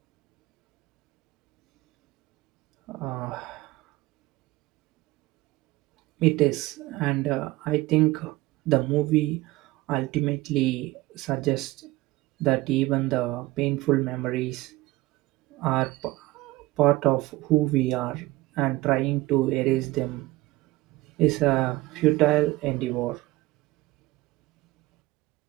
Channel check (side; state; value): left; quieter; 19.4 dB